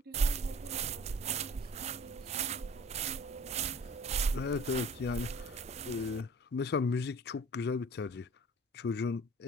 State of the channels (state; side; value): normal; both; correlation 0.47